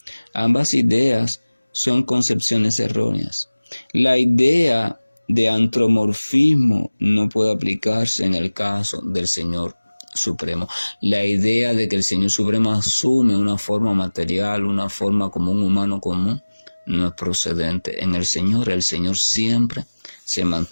Ambas ideas son concepciones erróneas. La idea de antropomorfismo no puede aplicarse en el caso del Señor Supremo. La idea de que el Señor Supremo asume una forma material, una forma como un humano común, no es procedente. En el Señor siempre se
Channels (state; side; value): inverted; both; correlation -1.00